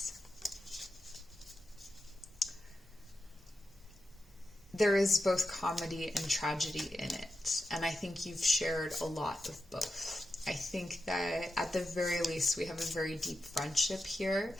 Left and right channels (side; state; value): both; normal; correlation 0.89